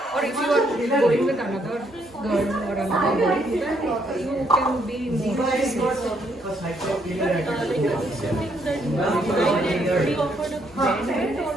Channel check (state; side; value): normal; both; correlation 0.72